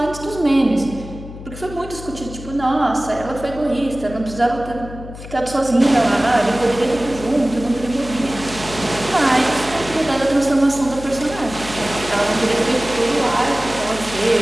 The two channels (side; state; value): left; noise; hum, 13 dB below the sound